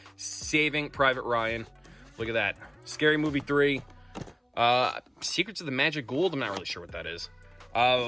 Saving Private Ryan. Look at that. Scary Movie 3. Secrets of the Magic Gould. I'm not really sure what that is.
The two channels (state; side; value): identical; both; correlation 1.00